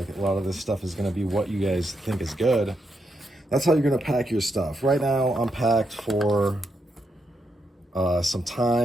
a lot of this stuff is going to be what you guys think is good. That's how you're going to pack your stuff. Right now, I'm packed for some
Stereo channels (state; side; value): normal; both; correlation 0.82